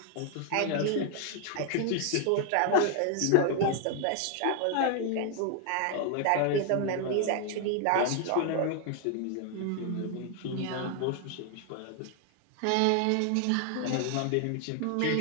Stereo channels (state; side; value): different; both; correlation 0.00